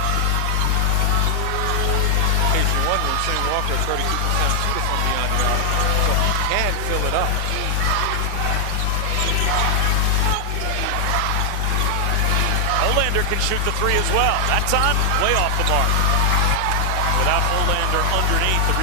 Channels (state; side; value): different; both; correlation 0.00